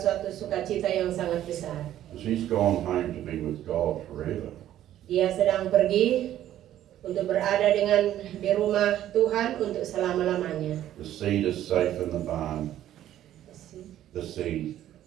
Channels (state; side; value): quieter; left; 12.2 dB